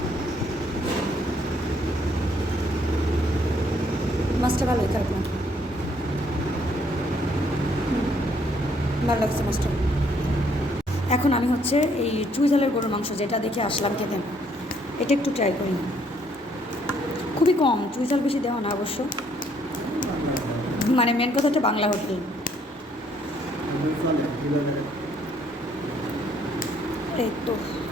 মাছটা ভালোই, খারাপ না, ভালো লাগছে মাছটা। এখন আমি হচ্ছে এই চুইঝালের গরুর মাংস যেটা দেখে আসলাম খেতে, এটা একটু ট্রাই করি। খুবই কম, চুইঝাল বেশি দেওয়া না অবশ্য, মানে মেন কথা হচ্ছে বাংলা হোটেল। এই তো,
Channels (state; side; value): normal; both; correlation 0.67